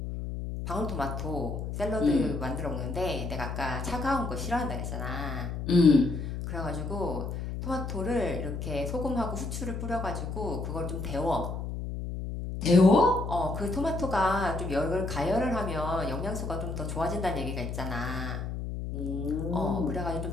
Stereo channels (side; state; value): left; noise; hum, 5 dB below the sound